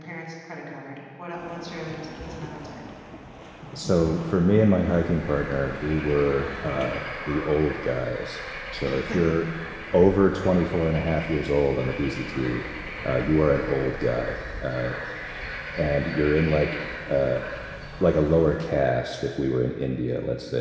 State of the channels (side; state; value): both; identical; correlation 1.00